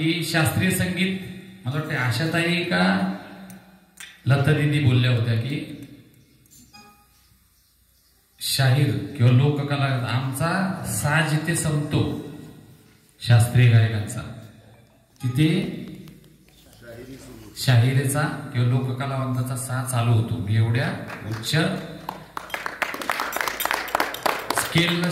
शास्त्रीय संगीत, मला वाटतं आशाताई का लता दिदी बोलल्या होत्या की शाहीर किंवा लोककला आमचा साज जिथे संपतो शास्त्रीय गायकांचा, तिथे शाहिरीचा किंवा लोककलावंताचा साज चालू होतो. मी एवढ्या उच्च स्केलला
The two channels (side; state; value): both; identical; correlation 1.00